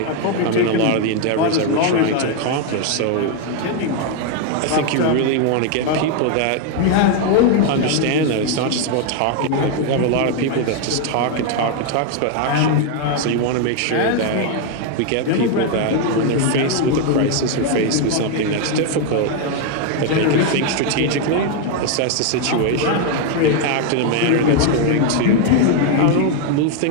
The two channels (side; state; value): both; different; correlation 0.01